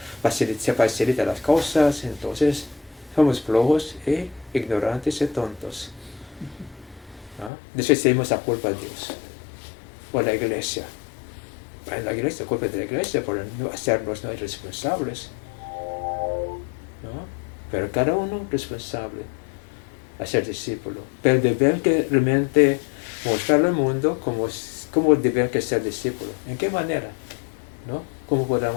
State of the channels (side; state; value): right; drops out; at 7.5 s